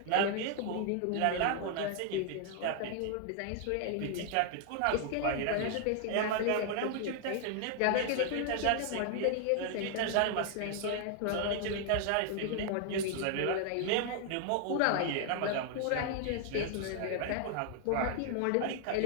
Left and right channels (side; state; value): both; different; correlation 0.00